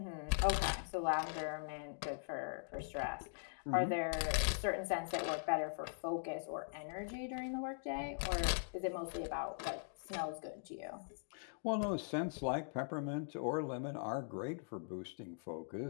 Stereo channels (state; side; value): silent; right; digital silence